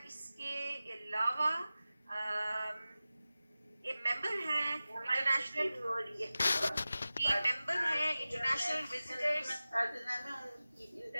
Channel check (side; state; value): both; inverted; correlation -0.96